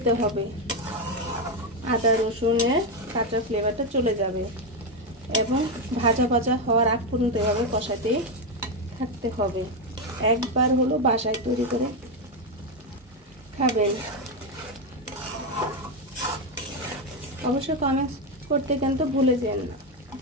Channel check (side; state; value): both; normal; correlation 0.08